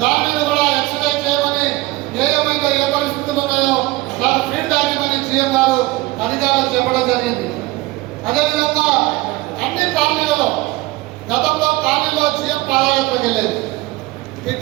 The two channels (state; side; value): quieter; left; 20.2 dB